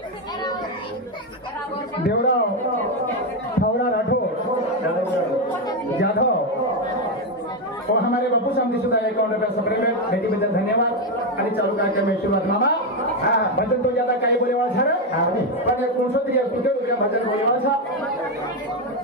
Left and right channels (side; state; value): both; normal; correlation 0.07